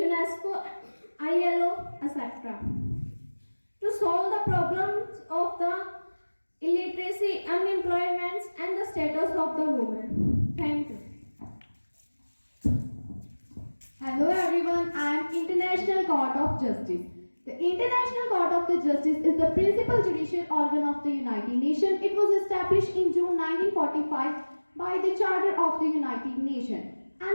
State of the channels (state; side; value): inverted; both; correlation -1.00